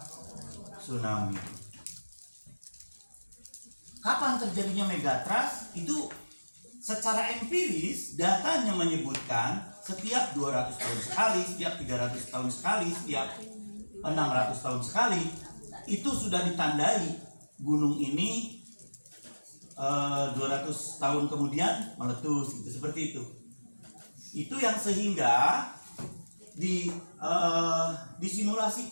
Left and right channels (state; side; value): inverted; both; correlation -1.00